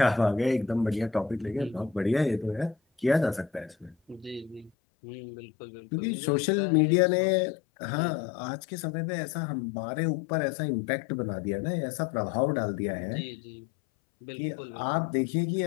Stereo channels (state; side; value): drops out; right; at 4.7 s